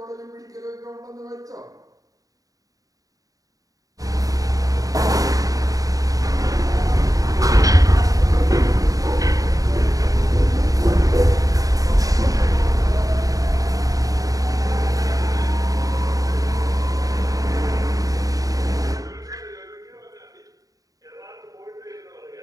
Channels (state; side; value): late; left; 0.17 ms